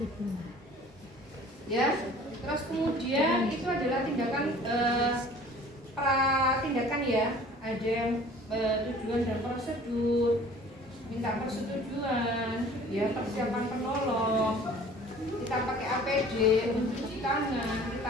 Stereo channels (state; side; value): normal; both; correlation 0.48